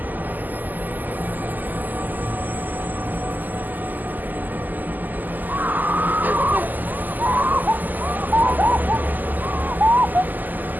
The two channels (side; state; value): left; late; 0.085 ms